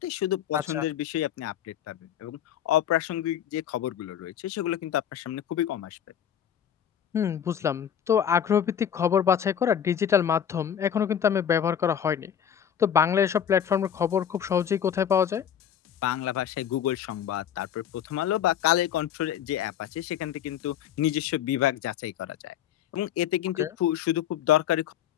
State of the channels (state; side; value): quieter; right; 9.3 dB